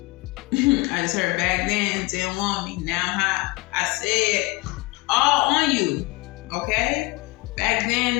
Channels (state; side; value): quieter; right; 23.8 dB